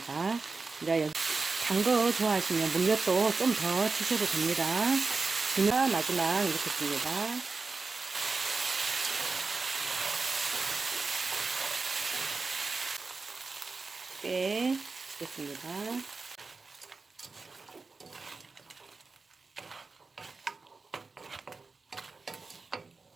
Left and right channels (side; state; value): left; quieter; 4.1 dB